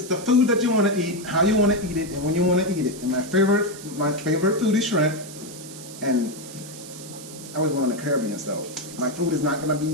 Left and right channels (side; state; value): right; noise; hiss, 15 dB below the sound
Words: the food that you want to eat, how you want to eat it, and when you want to eat it. And my favorite food is shrimp. And I was born in the Caribbean, so my food is not gonna